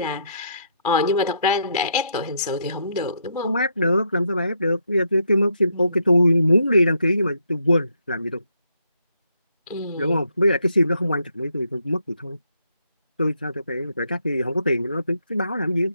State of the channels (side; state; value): both; inverted; correlation -0.75